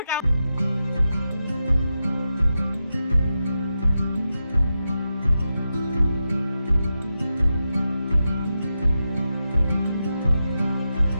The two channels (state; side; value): inverted; both; correlation -0.89